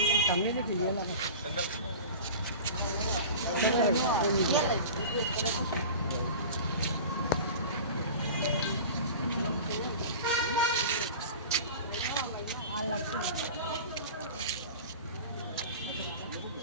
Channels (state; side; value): inverted; both; correlation -0.36